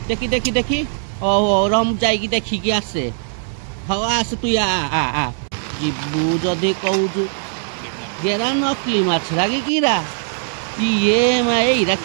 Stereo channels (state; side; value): silent; left; digital silence